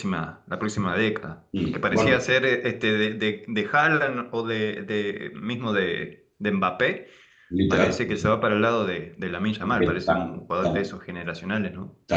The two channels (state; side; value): identical; both; correlation 1.00